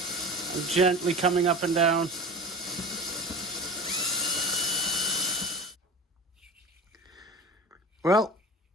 I'm gently coming up and down. Well,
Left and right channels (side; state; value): both; normal; correlation 0.33